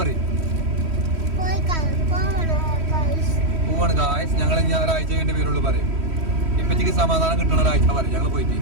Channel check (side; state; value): left; late; 3.1 ms